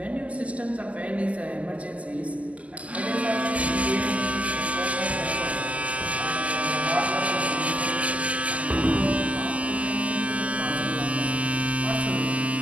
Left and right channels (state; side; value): late; left; 0.070 ms